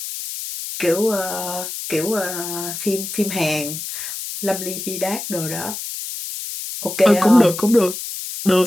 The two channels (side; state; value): left; noise; hiss, 7 dB below the sound